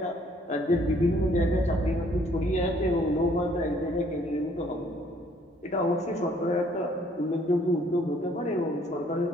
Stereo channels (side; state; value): both; normal; correlation 0.63